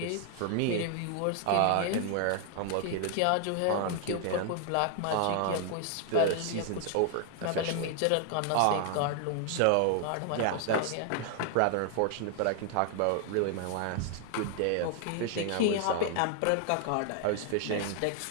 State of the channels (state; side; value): different; both; correlation 0.00